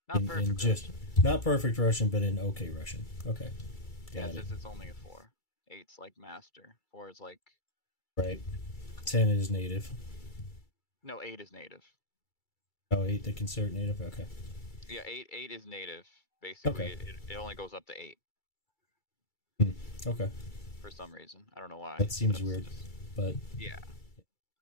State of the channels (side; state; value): right; late; 2.3 ms